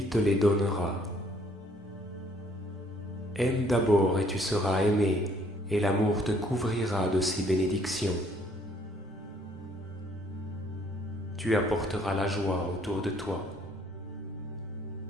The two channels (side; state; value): both; normal; correlation 0.63